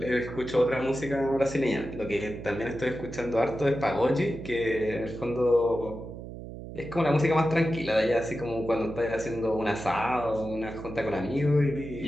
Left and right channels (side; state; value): right; noise; hum, 11 dB below the sound